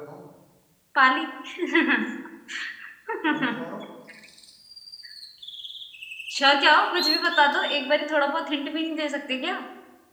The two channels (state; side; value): identical; both; correlation 1.00